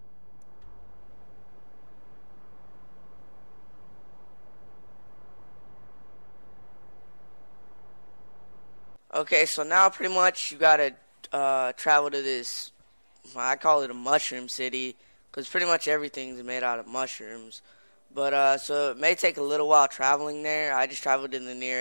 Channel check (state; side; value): inverted; both; correlation -1.00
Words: okay, so now pretty much you gotta travel to this, I call it a mushroom city, because pretty much everything's made out of mushrooms. But so it may take a little while traveling there. I just traveled to the